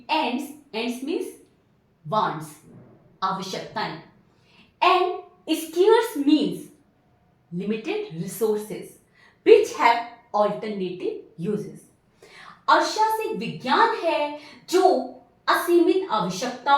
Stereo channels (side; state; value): both; identical; correlation 1.00